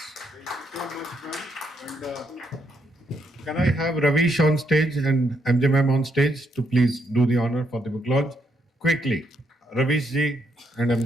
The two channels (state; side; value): normal; both; correlation 0.76